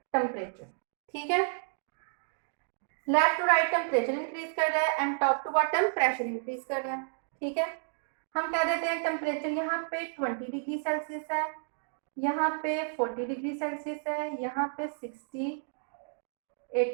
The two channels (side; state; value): left; silent; digital silence